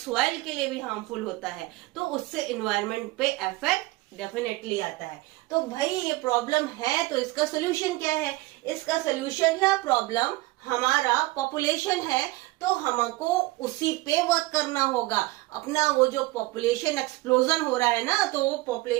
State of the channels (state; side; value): quieter; left; 20.1 dB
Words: के लिए भी हार्मफुल होता है। तो उससे एनवायरनमेंट पे इफेक्ट डेफिनेटली आता है। तो भाई ये प्रॉब्लम है, तो इसका सोल्यूशन क्या है? इसका सोल्यूशन या प्रॉब्लम हमारा पॉपुलेशन है, तो हमको उसी पे वर्क करना होगा। अपना वो जो पॉपुलेशन एक्सप्लोजन हो रहा है ना, तो वो